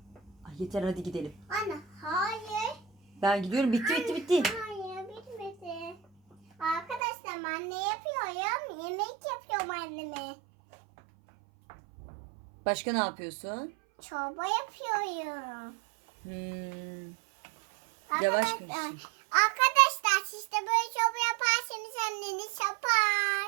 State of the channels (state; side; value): drops out; left; at 7.0 s